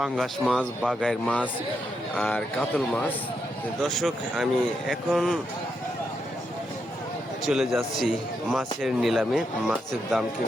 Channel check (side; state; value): both; normal; correlation 0.82